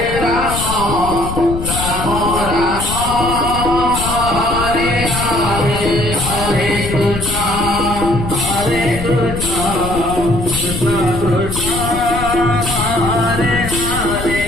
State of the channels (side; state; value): left; noise; rumble, 6 dB below the sound